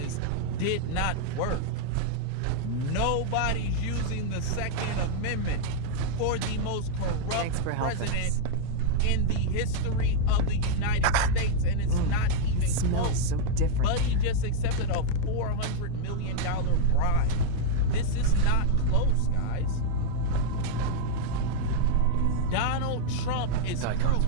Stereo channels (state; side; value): different; both; correlation 0.00